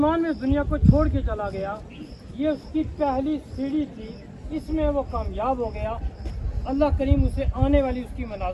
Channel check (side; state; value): both; identical; correlation 1.00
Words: میں دنیا کو چھوڑ کے چلا گیا، یہ اس کی پہلی سیڑھی تھی، اس میں وہ کامیاب ہو گیا. اللہ کریم اسے آنے والی اس کی